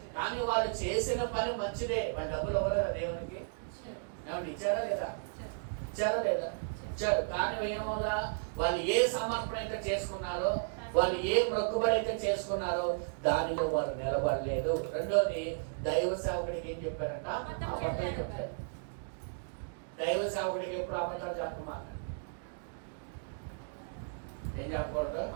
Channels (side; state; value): left; silent; digital silence